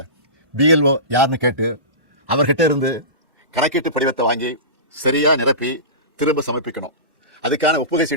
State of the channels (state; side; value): late; left; 1.1 ms